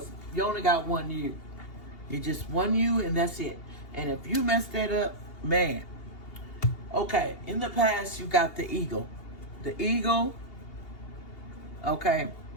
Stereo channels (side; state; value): right; late; 2.8 ms